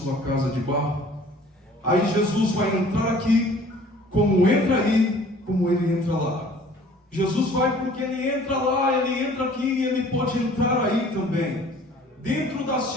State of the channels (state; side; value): normal; both; correlation 0.52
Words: casa de barro? Aí Jesus vai entrar aqui, como entra aí, como ele entra lá. Jesus vai porque ele entra lá, ele entra aqui e ele pode entrar aí também. Dentro da